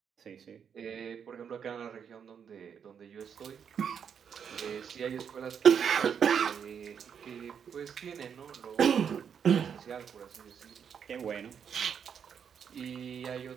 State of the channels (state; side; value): quieter; left; 7.5 dB